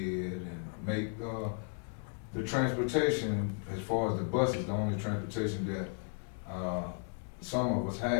and make the transportation, as far as the bus is the only transportation that some of us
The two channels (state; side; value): silent; right; 55 dB below the other